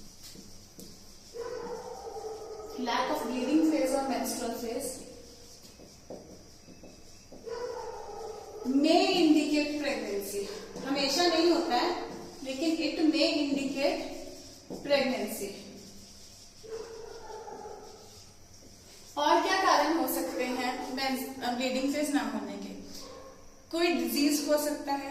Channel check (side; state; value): both; identical; correlation 1.00